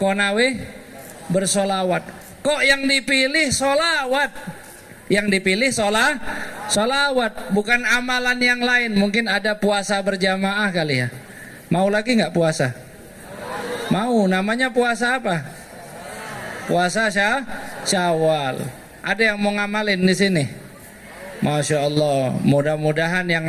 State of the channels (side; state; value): both; identical; correlation 1.00